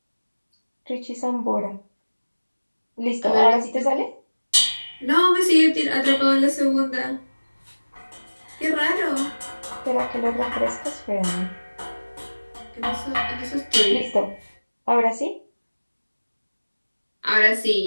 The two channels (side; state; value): both; inverted; correlation -1.00